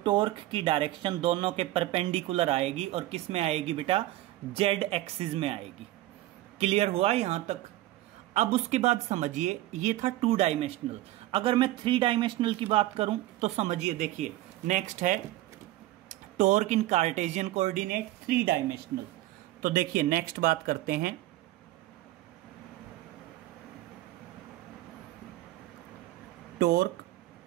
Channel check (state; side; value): quieter; left; 16.1 dB